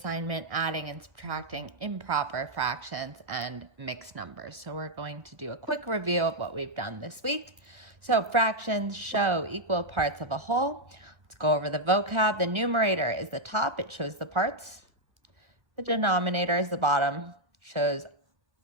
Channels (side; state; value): left; late; 1.4 ms